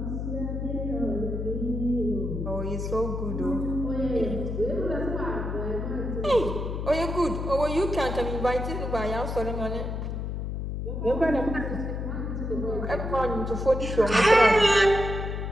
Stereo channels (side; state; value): left; noise; hum, 4 dB below the sound